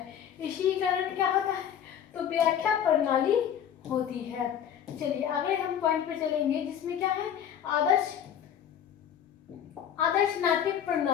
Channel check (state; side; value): quieter; right; 9.2 dB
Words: इसी कारण क्या होता है, तो व्याख्या प्रणाली होती है। चलिए अगले हम पॉइंट पे चलेंगे, जिसमें क्या है, आदर्श नाट्य